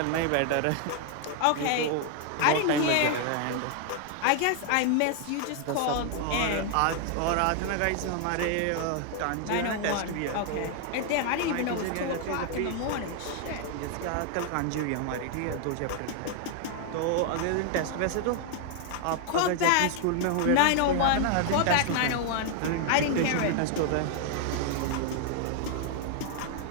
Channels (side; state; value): both; different; correlation 0.00